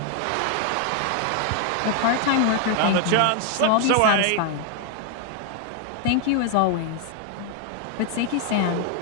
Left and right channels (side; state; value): both; different; correlation 0.00